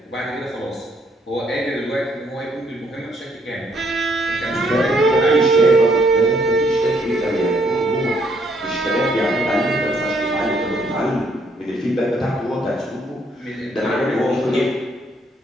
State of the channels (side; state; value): both; normal; correlation 0.70